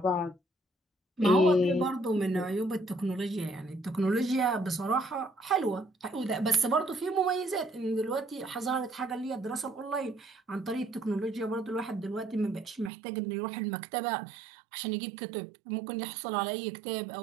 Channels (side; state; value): left; drops out; at 12.9 s